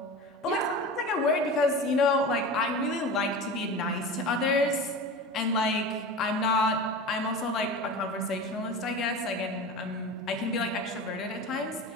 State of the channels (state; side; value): normal; both; correlation 0.31